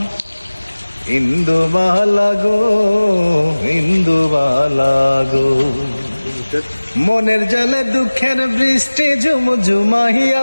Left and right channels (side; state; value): both; inverted; correlation -1.00